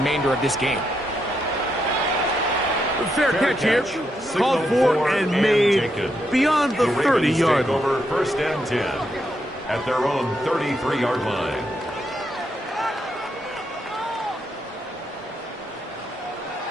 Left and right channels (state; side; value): normal; both; correlation 0.80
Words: of this game. Fair catch here. Called for and made beyond the 30-yard line. Over first and 10 at their own 33-yard line.